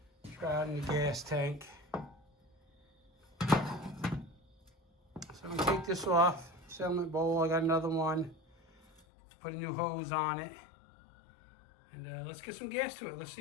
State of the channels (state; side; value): drops out; right; at 9.0 s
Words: Shroud in the gas tank. So I'm going to take this off, settlement bowl. I got another one. Put a new hose on it. And let's get some gas to it. Let's